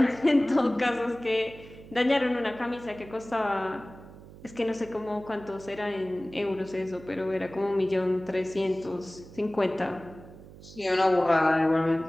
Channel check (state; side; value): noise; right; hum, 18 dB below the sound